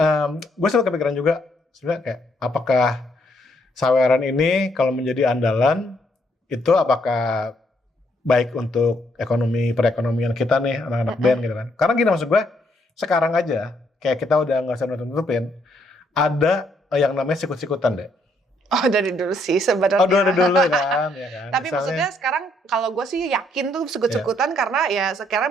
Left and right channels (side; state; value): both; normal; correlation 0.71